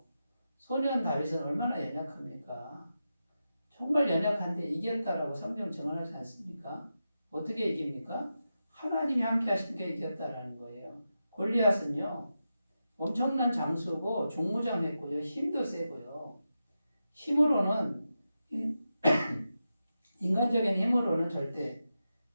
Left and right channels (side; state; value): both; inverted; correlation -0.89